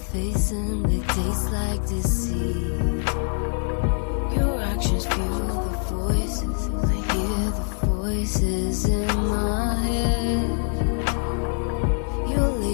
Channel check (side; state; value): right; silent; 57 dB below the other